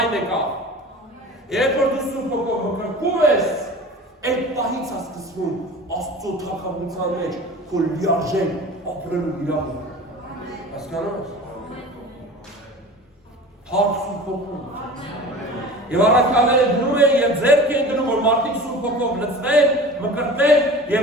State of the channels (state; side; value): normal; both; correlation 0.38